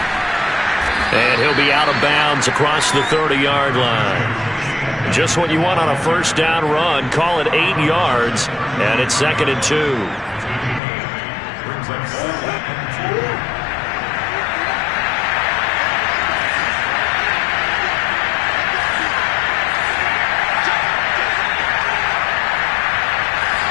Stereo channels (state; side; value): drops out; right; at 10.8 s